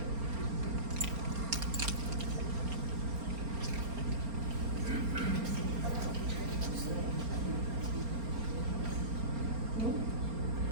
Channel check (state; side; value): late; left; 4.3 ms